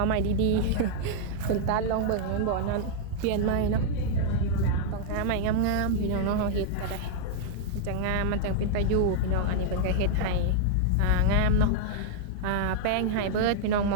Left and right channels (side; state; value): both; different; correlation -0.01